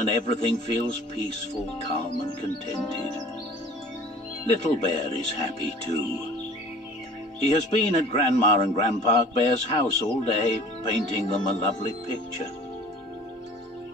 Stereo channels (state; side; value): normal; both; correlation 0.46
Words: everything feels peaceful, calm and contented. Little Bear is happy too. He has been at Grandma and Grandpa Bear's house all day, painting them a lovely picture.